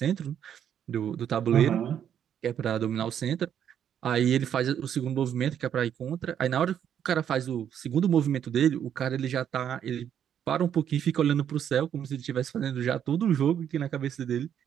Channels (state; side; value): quieter; left; 9.2 dB